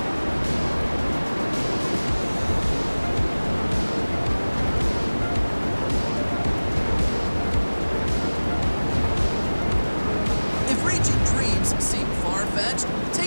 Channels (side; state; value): both; inverted; correlation -1.00